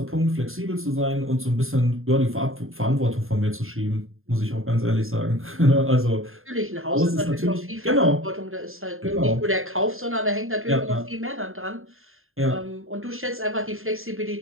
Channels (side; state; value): left; late; 0.61 ms